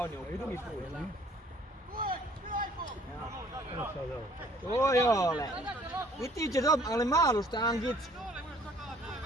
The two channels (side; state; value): both; normal; correlation 0.57